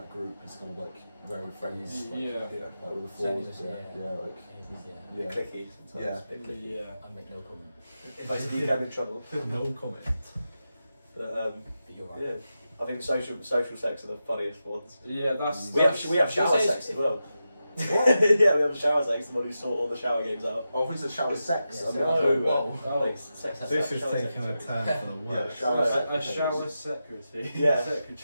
group, it's kind of like very friends. Like, like with the forwards. Yeah. Clicky. Yeah. I make no comment. If I speak, I'm in trouble. No comment. But you're right. yeah. I think social sex are the funniest ones. Yeah, that's we have shower sex as well. What? Yeah, we have shower sex. The one who sort all the shower games out. Oh, I think it's a shower sex. Yeah, This is taking a turn for the worse. A shower secretary. Yeah.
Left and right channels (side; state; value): both; inverted; correlation -0.90